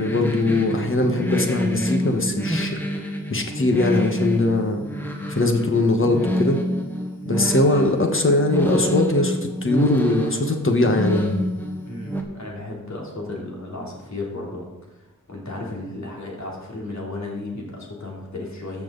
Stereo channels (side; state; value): both; normal; correlation 0.50